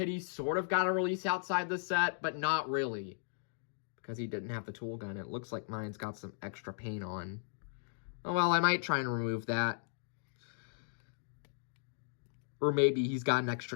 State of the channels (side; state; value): right; silent; digital silence